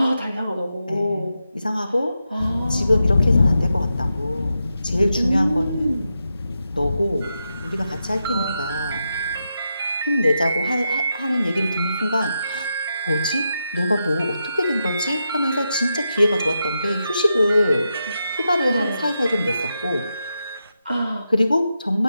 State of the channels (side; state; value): both; inverted; correlation -0.86